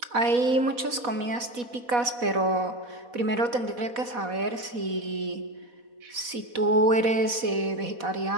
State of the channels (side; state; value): left; late; 4.1 ms